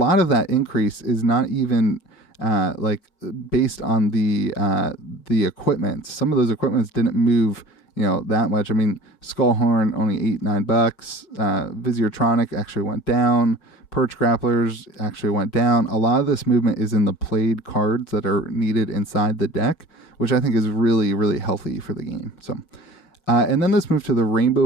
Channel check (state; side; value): late; right; 5.5 ms